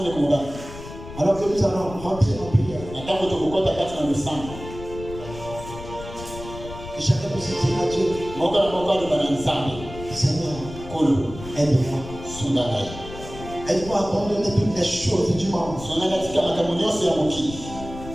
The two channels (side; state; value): left; noise; rumble, 13 dB below the sound